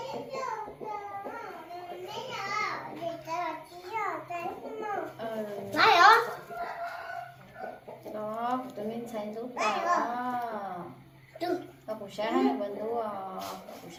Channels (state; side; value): identical; both; correlation 1.00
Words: buổi nó vẫn đủ buổi